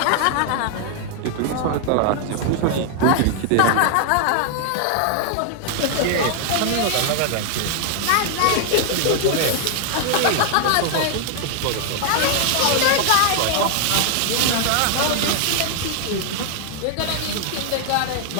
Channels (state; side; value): different; both; correlation 0.00